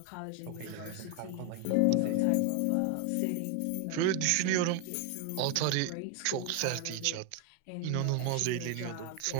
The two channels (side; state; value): both; different; correlation 0.01